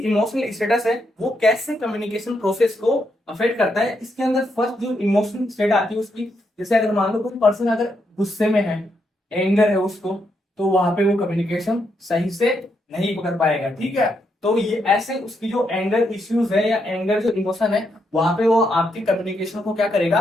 इमोशनल स्टेटस है वो कैसे कम्युनिकेशन प्रोसेस को अफेक्ट करता है। इसके अंदर फर्स्ट जो इमोशनल स्टेट आती है उसकी, जैसे अगर मान लो कोई पर्सन अगर गुस्से में है, एंगर है उसको, तो वहां पे वो कम्युनिकेशन सही से नहीं कर पाएगा, ठीक है। तो ये ऐसे उसकी जो एंगर इश्यूज है या एंगर जो इमोशन है, वहां पे वो आपकी कम्युनिकेशन को क्या करेगा,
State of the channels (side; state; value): both; normal; correlation 0.79